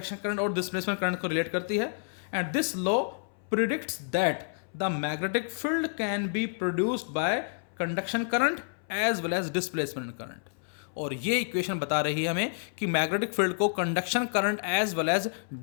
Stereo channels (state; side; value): silent; right; 58 dB below the other